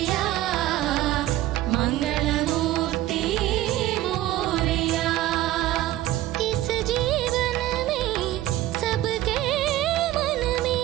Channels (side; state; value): left; quieter; 14.8 dB